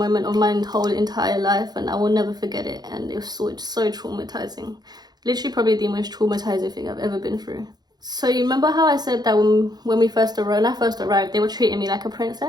of my whole entire life, and I will never forget it. And it was so traumatizing. Literally probably the most traumatizing thing I've ever been through. So you remember how I said that when I first arrived, they were treating me like a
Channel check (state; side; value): late; left; 0.20 ms